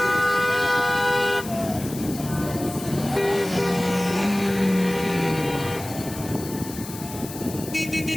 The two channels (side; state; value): left; noise; hiss, 13 dB below the sound